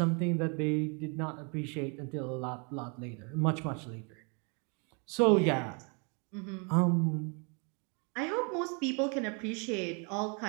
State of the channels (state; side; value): quieter; left; 35.3 dB